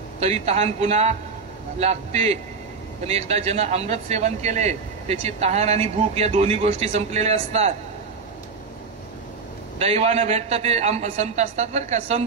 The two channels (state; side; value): quieter; left; 4.9 dB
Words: तरी तहान पुन्हा लागते. पण एकदा ज्यानं अमृत सेवन केले त्याची तहान आणि भूक या दोन्ही गोष्टी संपलेल्या असतात. दैवानं भेटतं ते संत असतात बरं का.